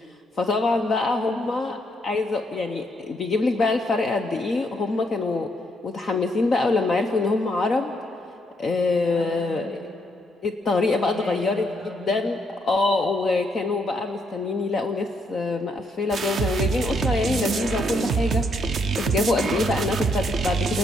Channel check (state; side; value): normal; both; correlation 0.74